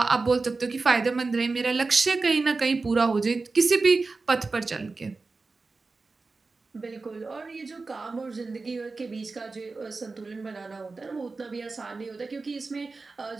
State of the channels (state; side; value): quieter; left; 3.9 dB